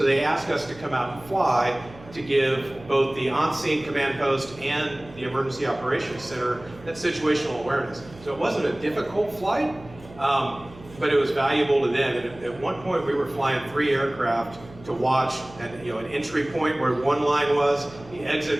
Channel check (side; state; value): right; noise; hum, 20 dB below the sound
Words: they asked us to come out and fly to give both the on-scene command post and the emergency operations center that situational awareness. So it wasn't a difficult flight, but it was valuable to them. And at one point we were flying 3 aircraft to watch an entry point where one line was, the